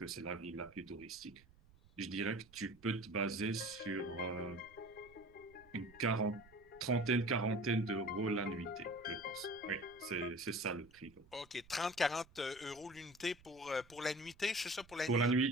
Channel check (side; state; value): right; noise; rumble, 26 dB below the sound